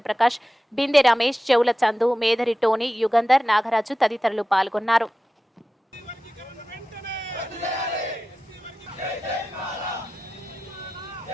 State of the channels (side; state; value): both; normal; correlation 0.94